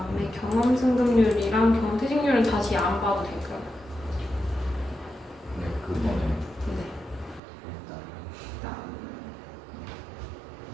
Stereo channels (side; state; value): left; drops out; at 7.4 s